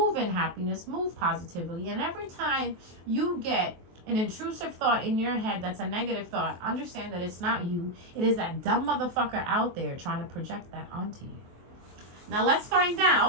in happiness. Move positively. And every time you get an intrusive thought in your head that's a negative thought, understand that it's not you. It is that dumb motherfucker out there trying to project that onto you. Now let's find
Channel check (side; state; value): left; late; 23 ms